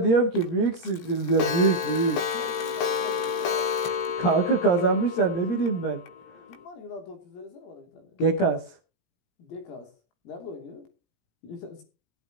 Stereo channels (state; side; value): late; right; 17 ms